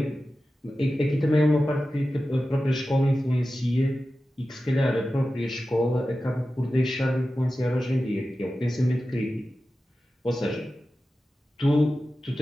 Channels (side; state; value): both; normal; correlation 0.93